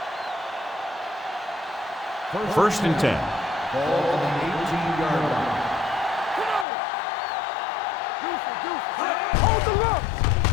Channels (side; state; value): right; drops out; at 6.7 s